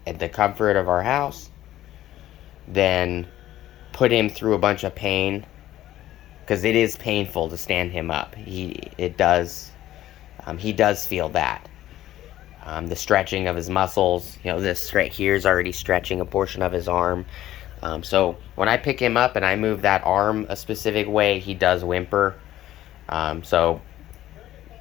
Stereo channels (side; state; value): right; quieter; 13.8 dB